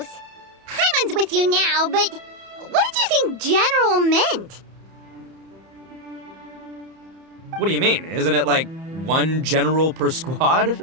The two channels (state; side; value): late; left; 31 ms